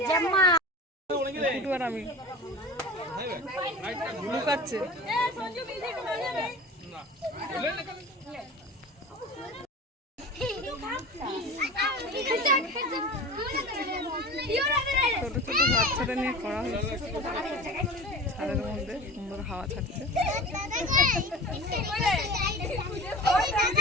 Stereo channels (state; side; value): normal; both; correlation 0.35